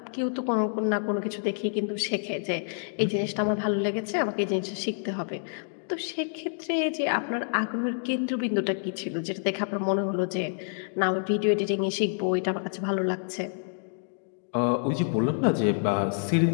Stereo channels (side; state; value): right; silent; digital silence